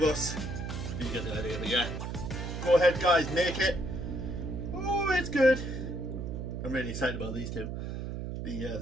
us. You get the idea, but yeah. Go ahead guys, make it. Oh, it's good. I'm really excited about these two.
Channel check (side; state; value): right; noise; hum, 5 dB below the sound